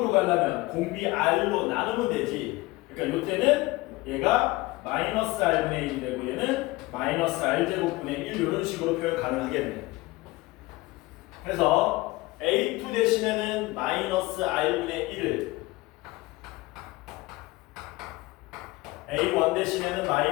가려면 공비 R로 나누면 되지. 그러니까 이때는 얘가 마이너스 R분의 1이 되고 얘는 마이너스 R제곱분의 1 이런 식으로 표현 가능하겠네. 그래서 A2 대신에는 마이너스 R분의 1을 A1 대신에는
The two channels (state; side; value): quieter; right; 20.9 dB